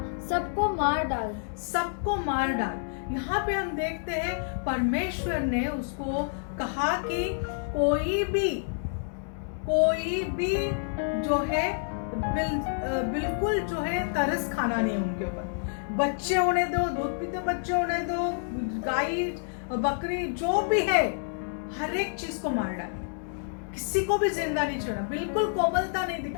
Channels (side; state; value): right; silent; digital silence